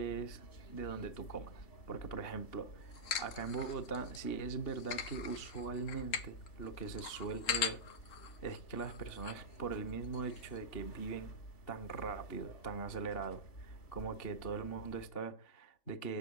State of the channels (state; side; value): late; right; 3.5 ms